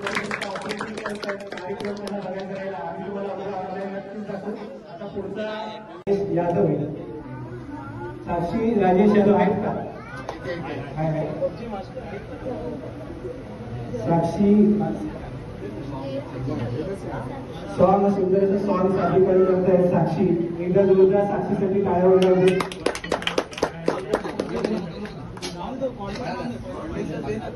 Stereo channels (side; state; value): both; identical; correlation 1.00